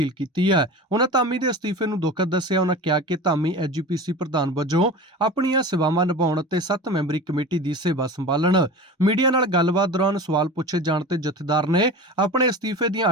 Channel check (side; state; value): both; normal; correlation 0.33